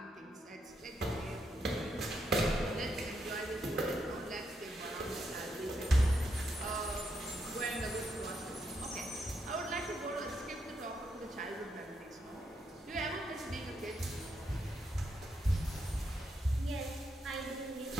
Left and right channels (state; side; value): normal; both; correlation 0.80